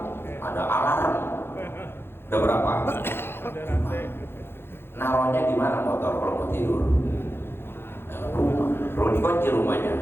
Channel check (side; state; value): right; late; 0.11 ms